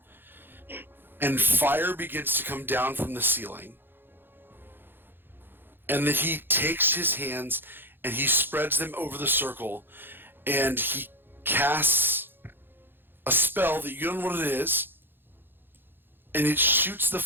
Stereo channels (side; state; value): left; late; 0.10 ms